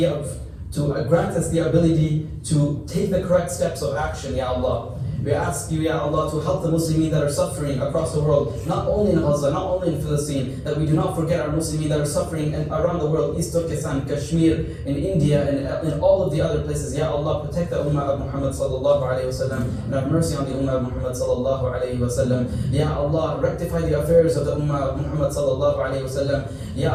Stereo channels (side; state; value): both; identical; correlation 1.00